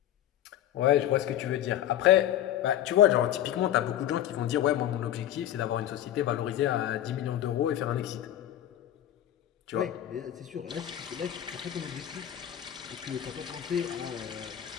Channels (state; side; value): quieter; right; 11.8 dB